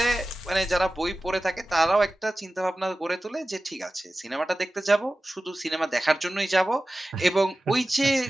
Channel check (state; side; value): normal; both; correlation 0.95